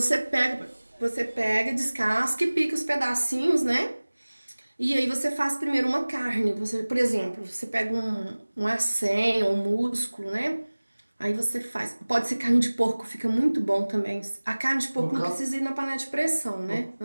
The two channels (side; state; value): both; inverted; correlation -1.00